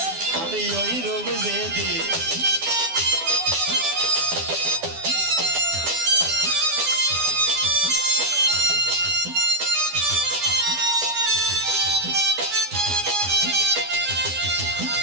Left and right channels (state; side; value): late; left; 12 ms